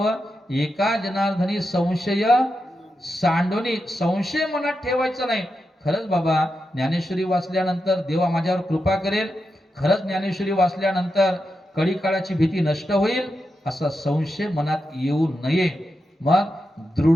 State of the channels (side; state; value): both; normal; correlation 0.87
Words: एका जनार्दनी संशय सांडोनी. संशय मनात ठेवायचा नाही. खरंच बाबा ज्ञानेश्वरी वाचल्यानंतर देवा माझ्यावर कृपा करेल, खरंच ज्ञानेश्वरी वाचल्यानंतर कडी काळाची भीती नष्ट होईल, असा संशय मनात येऊ नये. मग